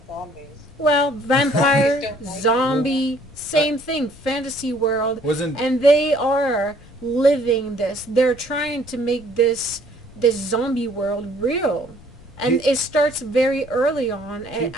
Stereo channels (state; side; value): noise; left; rumble, 23 dB below the sound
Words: zombies. Well, vampire, Zombies don't bite zombie, same thing, fantasy world, Wasn't and they are living this. They're trying to make this zombie world real, and Pe- it starts very early on. And